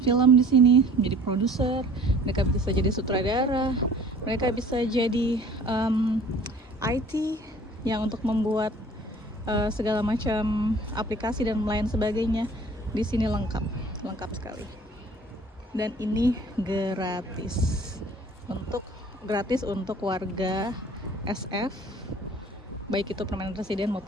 film di sini, menjadi produser, mereka bisa jadi sutradara, mereka bisa jadi IT yang untuk membuat segala macam aplikasi dan lain sebagainya. Di sini lengkap sekali. Dan ini gratis untuk warga SF, baik itu permanent resident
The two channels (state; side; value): normal; both; correlation 0.50